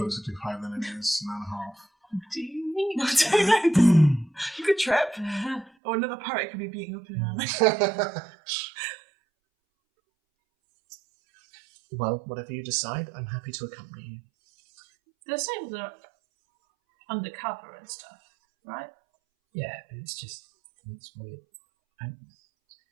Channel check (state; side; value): drops out; left; at 5.7 s